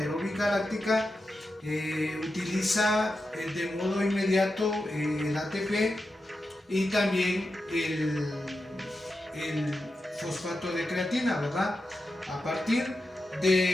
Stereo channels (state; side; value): normal; both; correlation 0.89